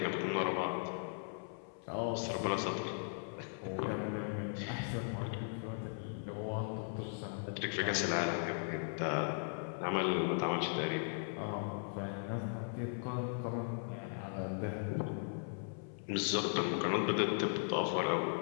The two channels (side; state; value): right; silent; 52 dB below the other